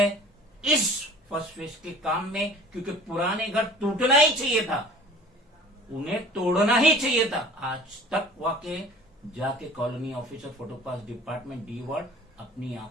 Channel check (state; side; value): normal; both; correlation 0.46